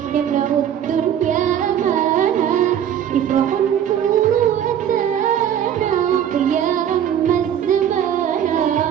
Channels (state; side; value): quieter; left; 9.6 dB